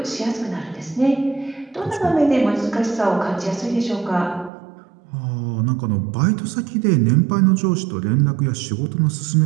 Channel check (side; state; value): left; drops out; at 4.5 s